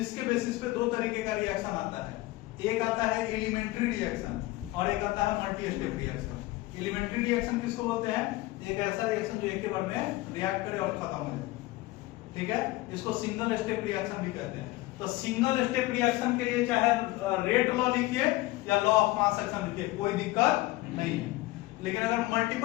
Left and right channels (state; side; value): quieter; right; 18.9 dB